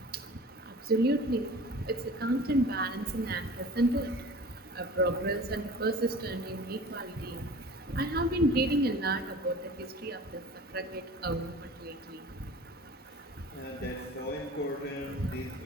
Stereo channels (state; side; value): normal; both; correlation 0.42